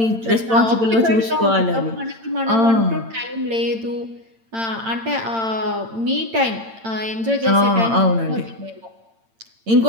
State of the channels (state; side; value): late; left; 8.8 ms